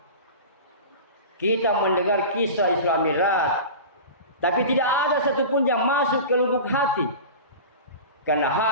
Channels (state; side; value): inverted; both; correlation -0.32